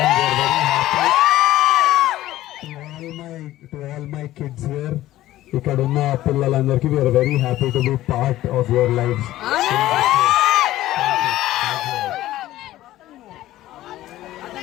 To all my kids here, ఇక్కడ ఉన్న పిల్లలందరికీ we are very happy to be part of your life.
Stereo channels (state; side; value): quieter; right; 15.0 dB